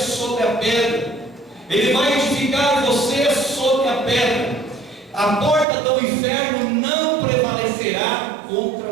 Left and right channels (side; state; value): left; drops out; at 5.7 s